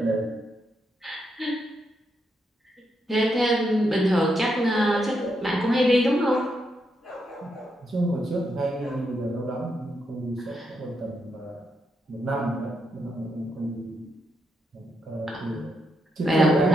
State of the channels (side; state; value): both; normal; correlation 0.81